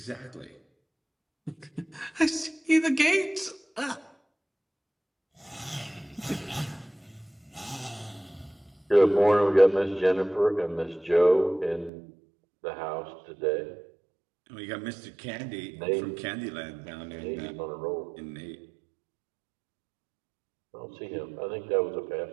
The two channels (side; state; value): left; drops out; at 11.9 s